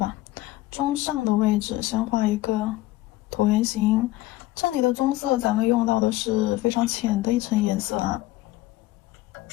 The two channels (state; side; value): quieter; right; 17.1 dB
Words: 中上的位置先画一个椭圆形。这里的棕色咱们用到的是非常浅的一层颜色啊。